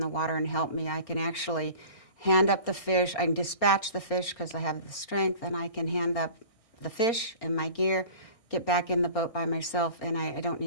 water and help me. I can actually hand up the fish. I can dispatch the fish because I have the strength, and I can hand up the fish and my gear, get back in the boat by myself, and I don't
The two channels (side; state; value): right; late; 1.6 ms